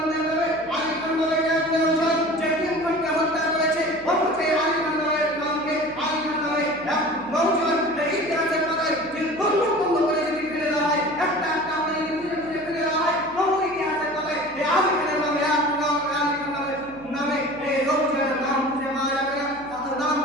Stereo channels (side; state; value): right; noise; hum, 23 dB below the sound